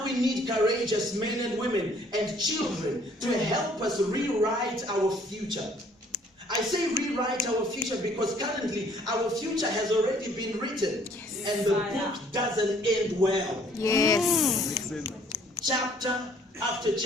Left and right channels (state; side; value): normal; both; correlation 0.60